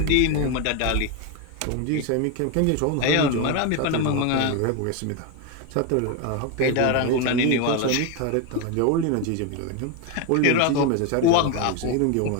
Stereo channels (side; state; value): both; different; correlation 0.02